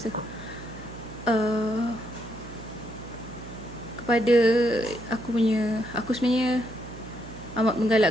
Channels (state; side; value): noise; right; hum, 14 dB below the sound